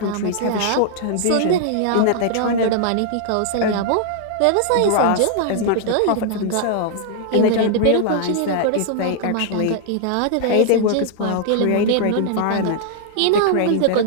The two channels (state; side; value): different; both; correlation -0.01